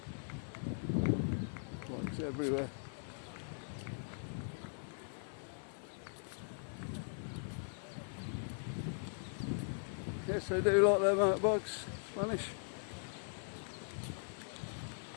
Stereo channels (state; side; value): silent; right; 51 dB below the other